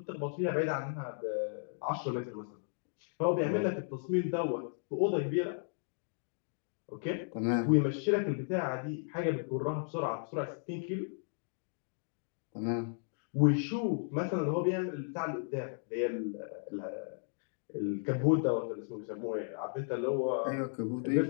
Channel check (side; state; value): right; silent; digital silence